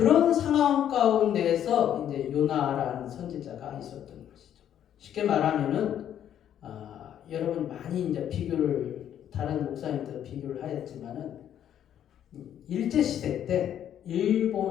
상황 가운데에서 이제 요나라는 선지자가 있었던 것이죠. 쉽게 말하면은 여러분 많이 이제 비교를 다른 목사님들 비교를 하였지만은 일제 시대 때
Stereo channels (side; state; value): right; quieter; 10.2 dB